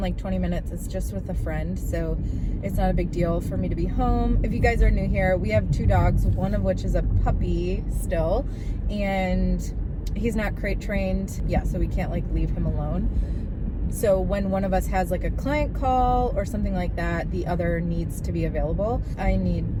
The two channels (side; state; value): both; identical; correlation 1.00